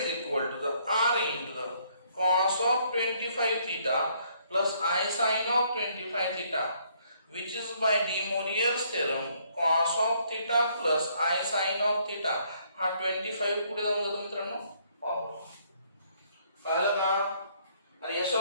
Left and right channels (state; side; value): inverted; both; correlation -0.67